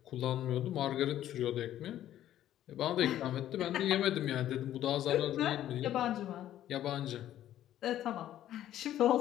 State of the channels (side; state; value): right; quieter; 12.3 dB